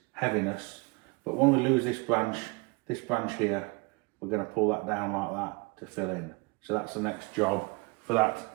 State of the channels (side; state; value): left; quieter; 28.5 dB